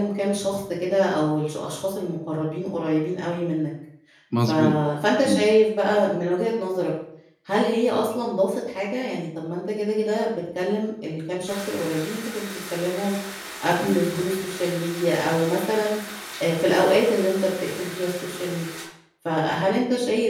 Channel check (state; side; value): identical; both; correlation 1.00